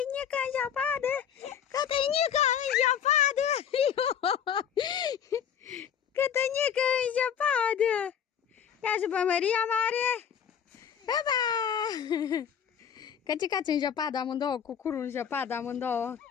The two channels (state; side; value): quieter; right; 8.4 dB